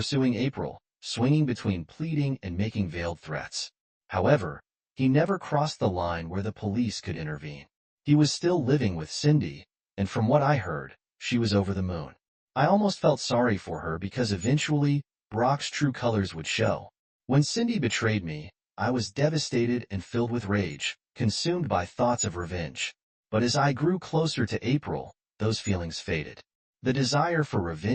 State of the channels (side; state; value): both; identical; correlation 1.00